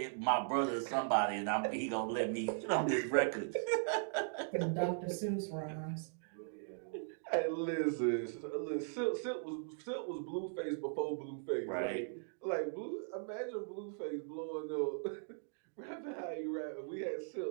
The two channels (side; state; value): left; silent; digital silence